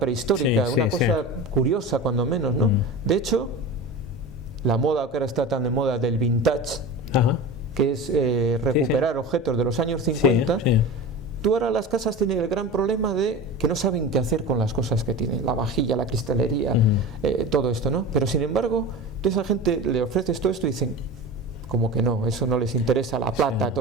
una cosa curiosa cuando menos, ¿no? De hecho, la moda que ahora está tan de moda del vintage, que es recuperar objetos de los años 50, tú ahora las casas tienen el gran problema de que no saben qué hacer con las cosas que tienen, la vajilla, la cristalería, todo esto, ¿no? Pero sin embargo, a esa gente le ofreces todo esto y dicen, como que no, eso no les interesa, la plata,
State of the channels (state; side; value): normal; both; correlation 0.30